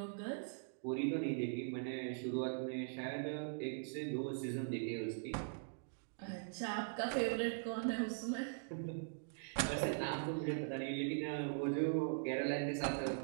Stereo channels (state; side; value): silent; left; digital silence